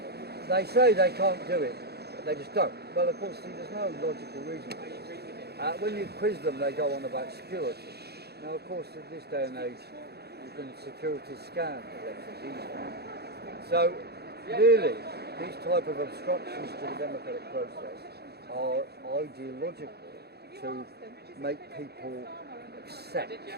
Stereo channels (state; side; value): late; left; 0.47 ms